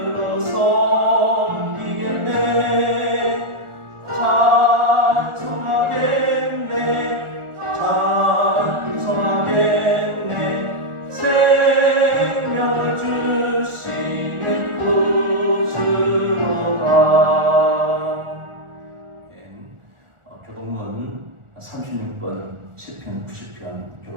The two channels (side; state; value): left; late; 1.4 ms